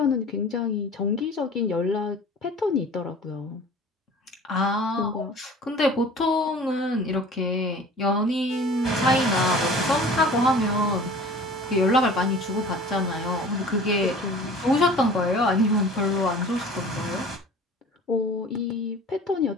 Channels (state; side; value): normal; both; correlation 0.44